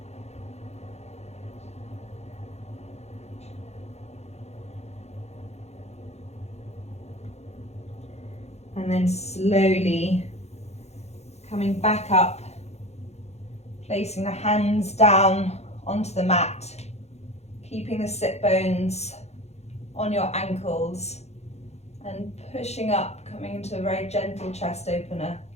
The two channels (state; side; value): late; right; 0.31 ms